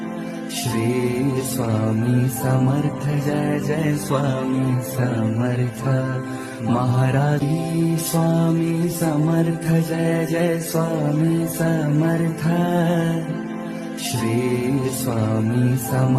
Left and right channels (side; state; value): both; identical; correlation 1.00